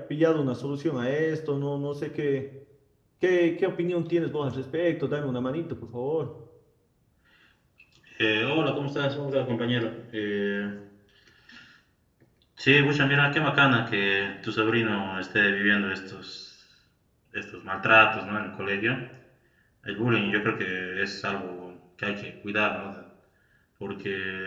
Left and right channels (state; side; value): identical; both; correlation 1.00